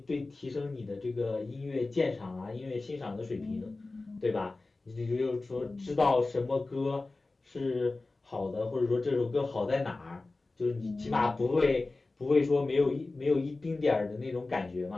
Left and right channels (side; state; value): right; quieter; 3.3 dB